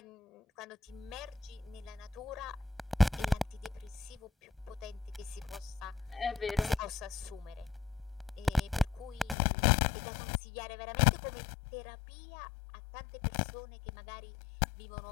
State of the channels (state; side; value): drops out; right; at 9.3 s